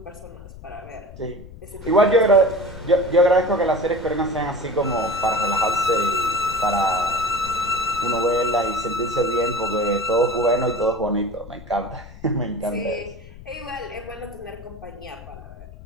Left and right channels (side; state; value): left; noise; rumble, 17 dB below the sound